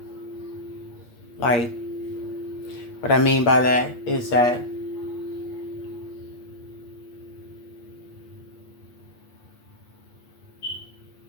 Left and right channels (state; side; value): late; right; 8.4 ms